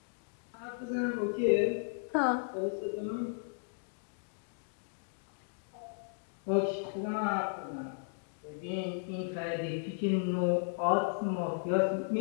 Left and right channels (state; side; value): silent; right; digital silence